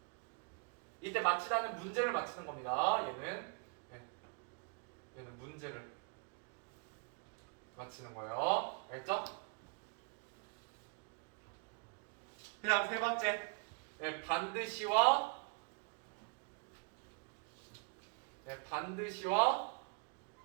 이때 맞추다는 문제를 맞추는 겁니다. 얘는 문제를 맞추는 거예요. 알겠죠? 그 다음 세 번째, 반드시와 왜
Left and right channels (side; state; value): left; quieter; 36.1 dB